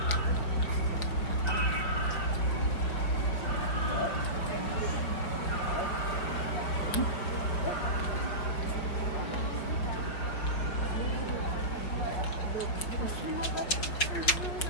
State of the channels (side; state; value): right; late; 5.2 ms